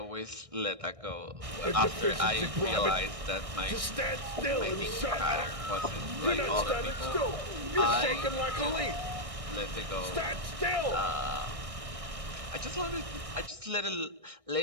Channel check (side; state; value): left; late; 1.6 ms